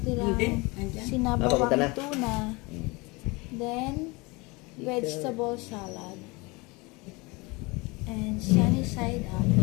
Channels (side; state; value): right; quieter; 25.7 dB